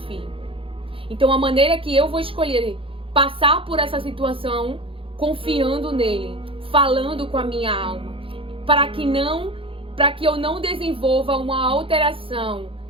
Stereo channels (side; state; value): left; late; 0.26 ms